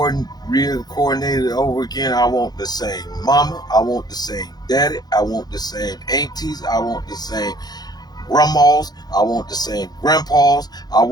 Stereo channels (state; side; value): late; right; 0.19 ms